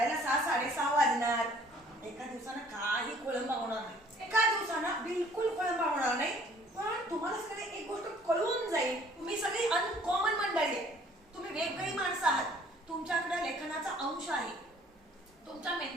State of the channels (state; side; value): normal; both; correlation 0.57